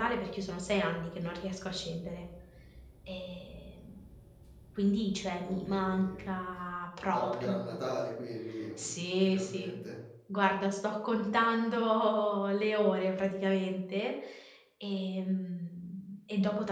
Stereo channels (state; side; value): identical; both; correlation 1.00